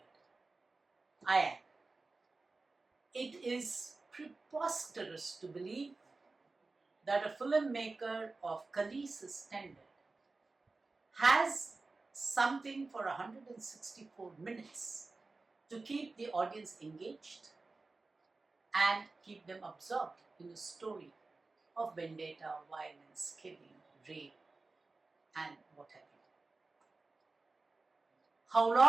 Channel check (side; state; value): left; quieter; 3.6 dB